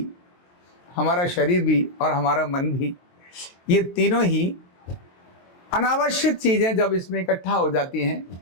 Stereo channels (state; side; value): late; right; 23 ms